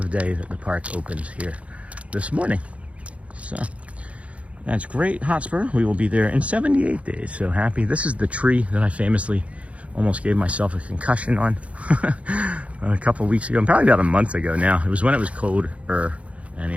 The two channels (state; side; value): late; left; 0.064 ms